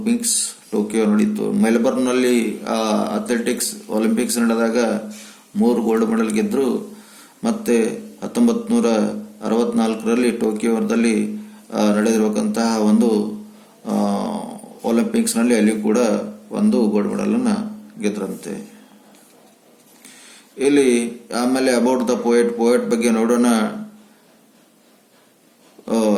Tokyo ನಡೀತು. ಮೆಲ್ಬರ್ನ್ನಲ್ಲಿ ಅಥ್ಲೆಟಿಕ್ಸ್ ಒಲಿಂಪಿಕ್ಸ್ ನಡೆದಾಗ 3 ಗೋಲ್ಡ್ ಮೆಡಲ್ ಗೆದ್ರು. ಮತ್ತೆ 1964ರಲ್ಲಿ ಟೋಕಿಯೋದಲ್ಲಿ ನಡೆದಿರಬೇಕಂತಹ ಒಂದು ಒಲಿಂಪಿಕ್ಸ್ನಲ್ಲಿ ಅಲ್ಲಿ ಕೂಡ 1 ಗೋಲ್ಡ್ ಮೆಡಲ್ ಅನ್ನ ಗೆದ್ರಂತೆ. ಇಲ್ಲಿ ಆಮೇಲೆ ಅಬೌಟ್ ದ ಪೋಯಟ್ ಬಗ್ಗೆ ನೋಡೋಣ.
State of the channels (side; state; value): both; identical; correlation 1.00